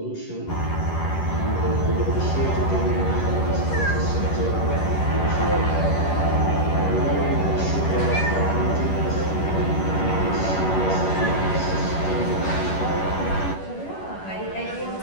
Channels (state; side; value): late; right; 11 ms